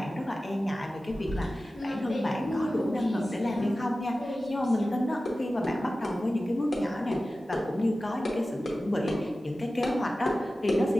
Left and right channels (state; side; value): normal; both; correlation 0.95